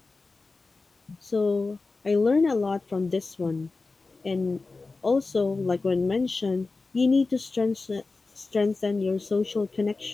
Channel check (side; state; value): right; quieter; 3.8 dB